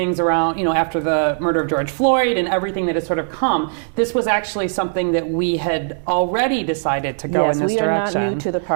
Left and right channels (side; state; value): left; silent; digital silence